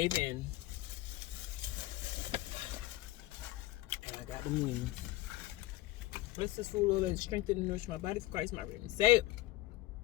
in. And I got the moon. Bless this food, Lord, that strengthen and nourish my body for Christ, my redeemer. Say it.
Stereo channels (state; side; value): quieter; right; 17.4 dB